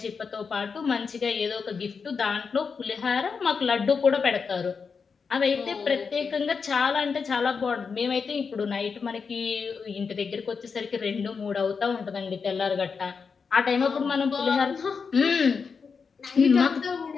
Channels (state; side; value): quieter; right; 5.5 dB